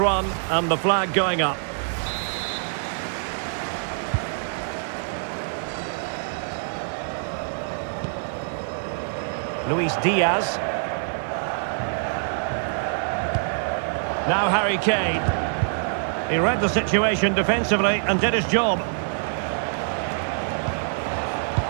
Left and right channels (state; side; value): silent; left; digital silence